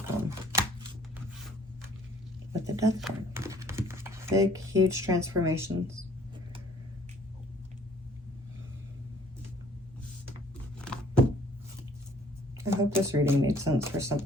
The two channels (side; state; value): both; normal; correlation 0.57